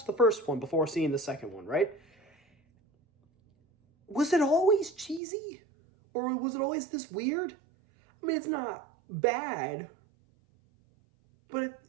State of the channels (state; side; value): drops out; left; at 5.2 s